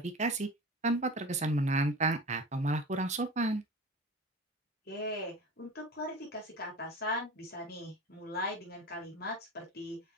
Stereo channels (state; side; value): normal; both; correlation 0.34